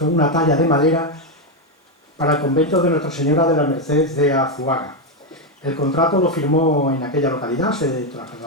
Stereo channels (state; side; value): normal; both; correlation 0.06